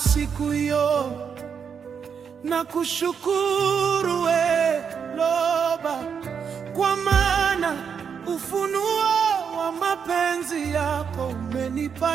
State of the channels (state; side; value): quieter; left; 6.8 dB